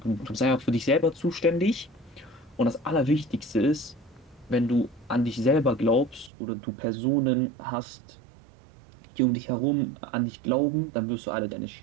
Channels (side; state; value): left; drops out; at 6.3 s